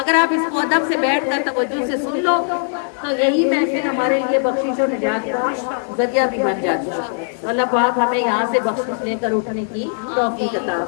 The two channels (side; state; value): right; silent; 66 dB below the other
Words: آپ اس کو ادب سے بیٹھ کر توجہ سے سن لو تو یہی محفل ہمارے لیے بخشش اور نجات کا ذریعہ بھی بن جاتی ہے. اللہ پاک ہمیں یہاں سے بخشش لے کر اٹھنے کی توفیق عطا